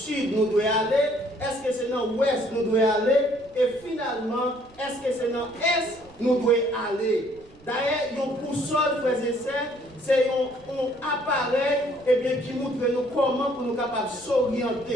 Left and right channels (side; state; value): right; noise; rumble, 26 dB below the sound